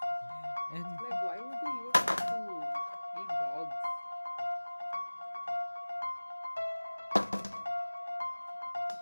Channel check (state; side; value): inverted; both; correlation -1.00